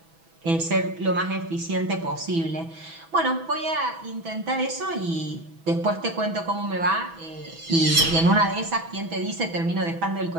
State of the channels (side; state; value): left; late; 6.1 ms